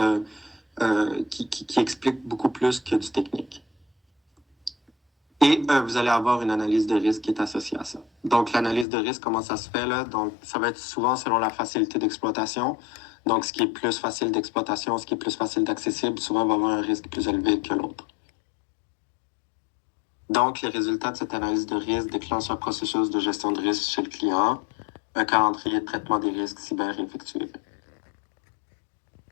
qui explique beaucoup plus que du technique. Et vous allez avoir une analyse de risque qui est associée à ça. Donc, l'analyse de risque, comment ça se fait là? Donc, ça va être souvent selon la facilité d'exploitation. Donc, ce qui est plus facile d'exploitation, ce qui est plus facile d'accessible, souvent va avoir un risque plus élevé que l'autre. Donc, les résultats de cette analyse de risque déclenchent un processus de gestion de risque chez le client, un calendrier de traitement des risques cyber effectué.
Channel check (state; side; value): drops out; right; at 8.8 s